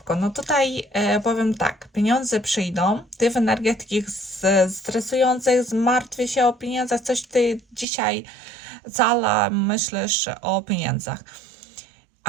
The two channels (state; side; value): drops out; left; at 7.9 s